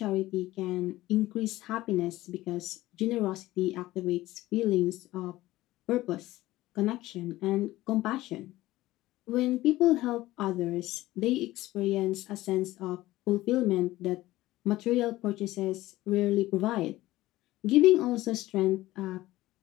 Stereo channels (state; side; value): quieter; right; 17.0 dB